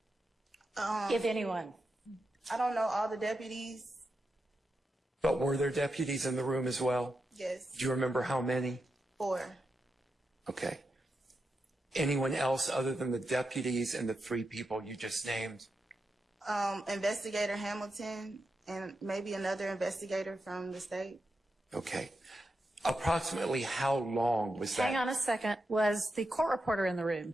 If anyone. I don't know all the deputies. But were there deputies in the room as well? Yes. Do you remember how many? 4. Okay. Anyone else other than the deputies and the 3 people you just named? Investigator Hamilton and maybe another investigator from the state. Okay. Approximately how long was that? Hang on a second. Was the court reporter in the room?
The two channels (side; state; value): both; normal; correlation 0.88